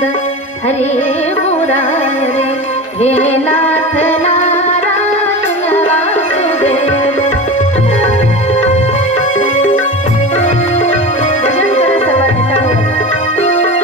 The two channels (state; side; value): normal; both; correlation 0.29